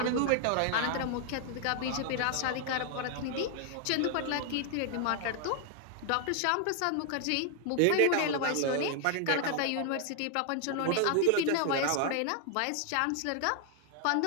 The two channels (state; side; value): different; both; correlation 0.00